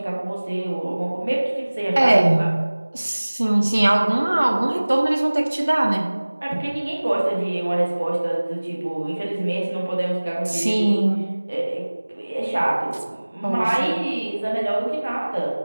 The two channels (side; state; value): both; inverted; correlation -1.00